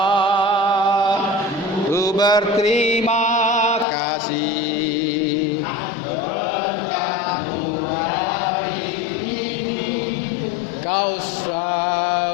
ku berterima kasih. Kau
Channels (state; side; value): drops out; right; at 3.9 s